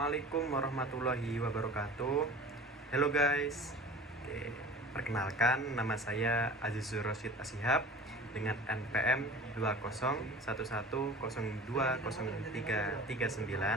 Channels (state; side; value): normal; both; correlation 0.40